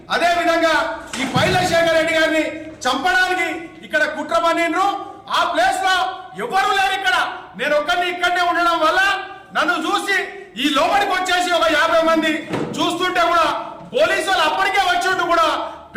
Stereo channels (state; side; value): identical; both; correlation 1.00